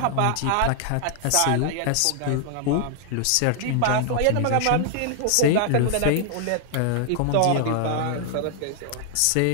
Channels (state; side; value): different; both; correlation 0.00